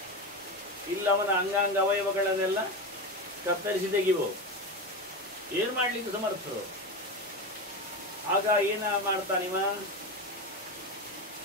ಇಲ್ಲ ಅವನ ಅಂಗಾಂಗ ಅವಯವಗಳನ್ನೆಲ್ಲ ಕತ್ತರಿಸಿ ತೆಗಿಬೋದು. ಏನು ಮಾಡಲಿಕ್ಕೆ ಸಮರ್ಥರು. ಆಗ ಏನ ಮಾಡ್ತಾನಿವ?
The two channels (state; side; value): normal; both; correlation 0.20